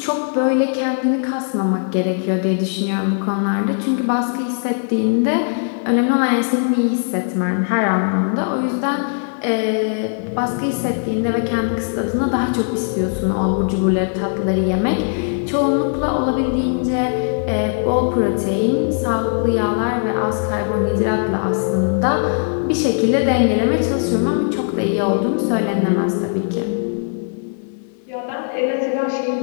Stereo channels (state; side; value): silent; right; 62 dB below the other